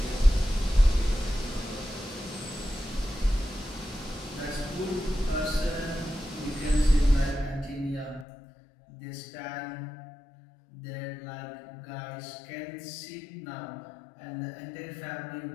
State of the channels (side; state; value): right; drops out; at 8.2 s